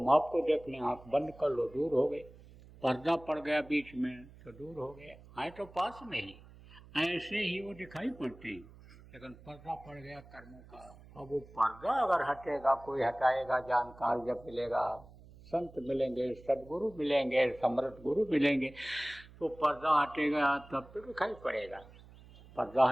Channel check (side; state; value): right; noise; hum, 21 dB below the sound